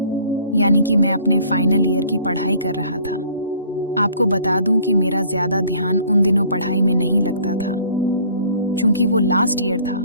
यानी कि मैं अपने फाइनल ईयर की पढ़ाई कर रहा था। आपको बता दूं कि मेरा ज्यादा ध्यान उन दिनों पढ़ाई में नहीं लगता था। चूंकि वो लास्ट ईयर था,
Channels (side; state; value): both; inverted; correlation -0.54